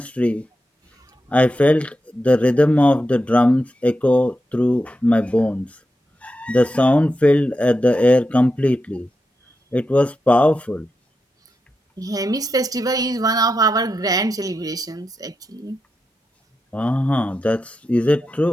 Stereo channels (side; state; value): both; normal; correlation 0.88